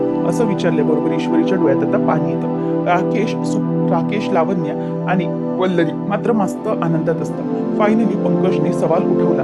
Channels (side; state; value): both; identical; correlation 1.00